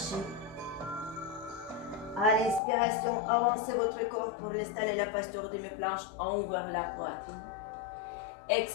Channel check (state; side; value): drops out; right; at 2.6 s